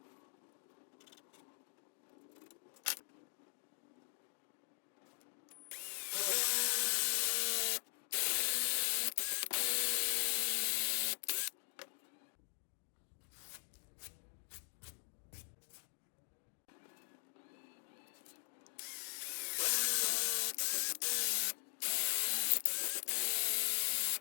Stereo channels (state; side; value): silent; right; digital silence